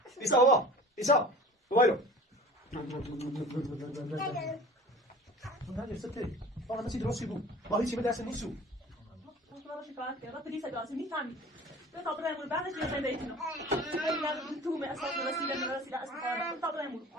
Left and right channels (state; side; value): normal; both; correlation 0.41